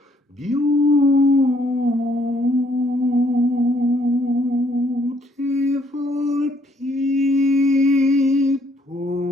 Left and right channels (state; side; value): normal; both; correlation 0.67